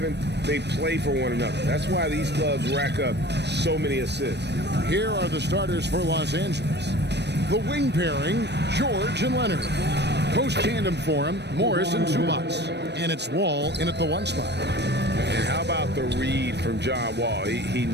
they play for one another. That's why these clubs rack up so many assists. Here are the starters for Los Angeles. The wing pairing, George and Leonard. Post tandem for him, Morris and Zubats. And it's Wall in at the 1 spot. And how about the read from John Wall? He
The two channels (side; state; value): left; late; 0.50 ms